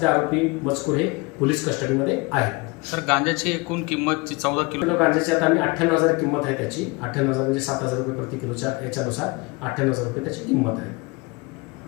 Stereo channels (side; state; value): right; quieter; 26.3 dB